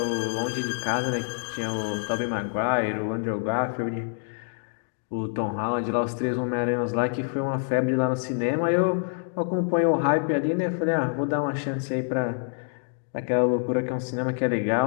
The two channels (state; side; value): silent; right; digital silence